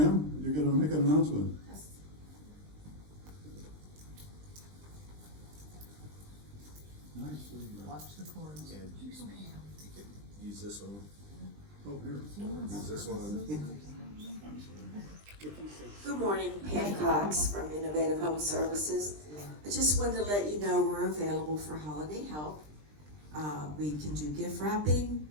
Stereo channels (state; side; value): late; left; 20 ms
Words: you're gonna make an announcement. Nicely done. Watch the cords. And you can use this one. Oh, here. Use this one. Good morning, Pam Cox from Innovative Home Services. I just wanted to let you know we're available for holiday help. We can do gift wrapping,